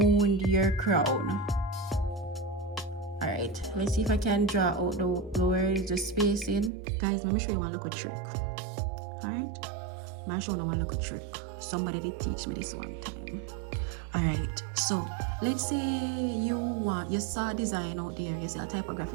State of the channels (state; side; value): drops out; left; at 6.7 s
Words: your crown. Alright, let's see if I can draw out the where is the spacing. Guys, let me show you one little trick. Alright? I'm showing you a little trick. Somebody did teach me this one time. Alright, so let's say you saw a design out there, you see a